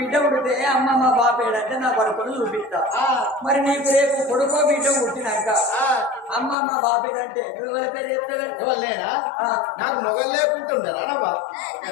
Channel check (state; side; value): drops out; right; at 6.6 s